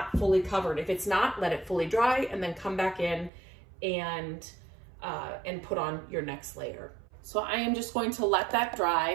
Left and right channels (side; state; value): left; drops out; at 3.3 s